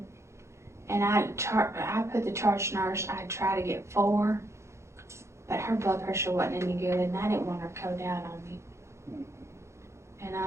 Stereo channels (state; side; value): late; left; 0.13 ms